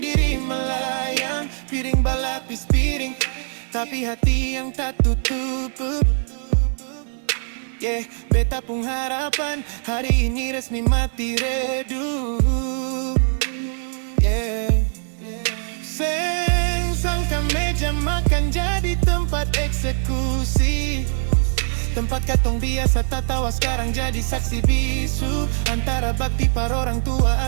diri melayang. Piring balapis piring, tapi hati yang tak tutup. Yeah, beta pun harapan hari ini resmi mati redup. Yeah, seng sangka meja makan jadi tempat eksekusi. Tempat katong biasa tak tawa sekarang jadi saksi bisu. Antara bakti par orang tua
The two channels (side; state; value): left; silent; digital silence